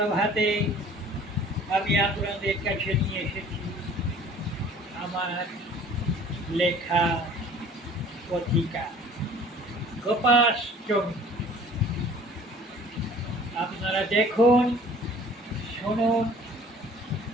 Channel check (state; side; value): normal; both; correlation 0.50